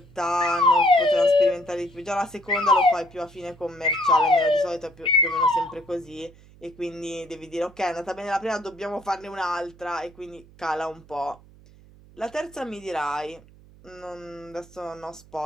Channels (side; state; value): right; noise; hum, 24 dB below the sound